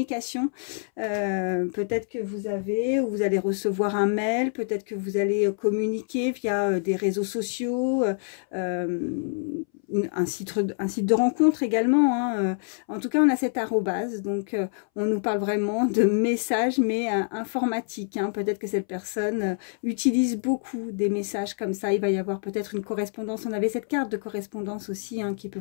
peut-être que vous avez ou vous allez recevoir un mail, peut-être que vous allez communiquer via des réseaux sociaux, un site de rencontre également, hein. En tout cas, on a cette arrobase, donc on nous parle vraiment de messages, mais informatiques, hein. Peut-être que cette personne utilise beaucoup des messages comme ça. Il va y avoir peut-être une correspondance. On avait cette carte de correspondance aussi, hein, qui peut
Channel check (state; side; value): silent; right; 61 dB below the other